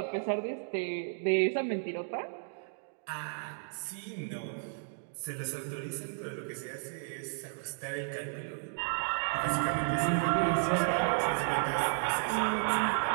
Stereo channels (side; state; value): left; silent; digital silence